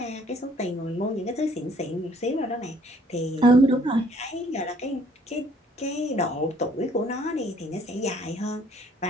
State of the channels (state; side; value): normal; both; correlation 0.60